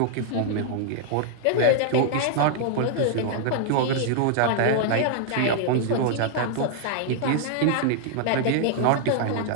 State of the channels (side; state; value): both; different; correlation -0.01